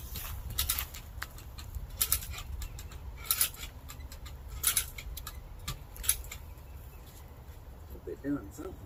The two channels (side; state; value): both; identical; correlation 1.00